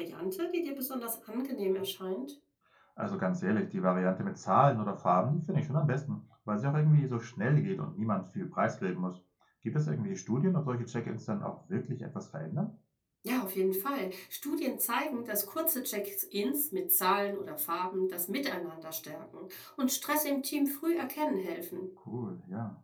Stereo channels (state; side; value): identical; both; correlation 1.00